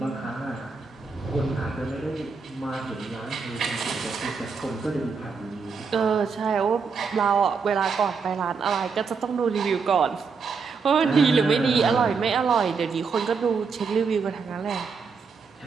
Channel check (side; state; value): left; quieter; 5.3 dB